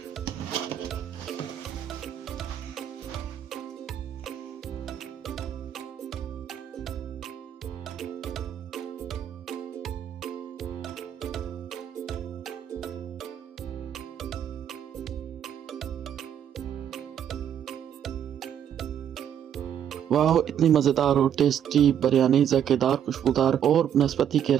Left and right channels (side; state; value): left; quieter; 9.4 dB